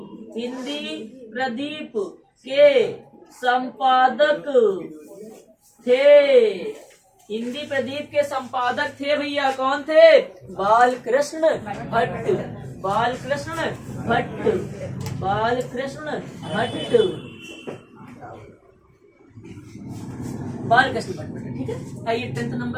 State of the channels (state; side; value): identical; both; correlation 1.00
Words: के संपादक थे, हिंदी प्रदीप के संपादक थे भैया, कौन थे? बालकृष्ण भट्ट, बालकृष्ण भट्ट, बालकृष्ण भट्ट, बालकृष्ण भट्ट। ठीक है, आइए 10th